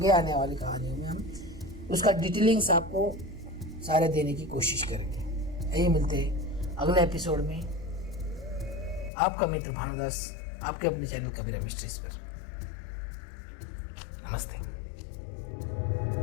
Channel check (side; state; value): right; drops out; at 9.1 s